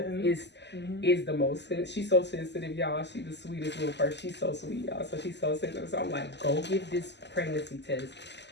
is the most. She's so sensitive, y'all. She's the sweetest little person. She's so sweet, y'all. So she's so sensitive. So I'm like, go give this pregnancy test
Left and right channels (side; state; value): right; late; 0.50 ms